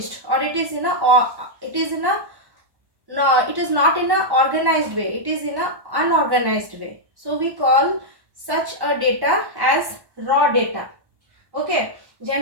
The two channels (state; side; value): late; left; 1.2 ms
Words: or it is in a no, it is not in a organized way, it is in a unorganized way. So we call such a data as raw data. Okay,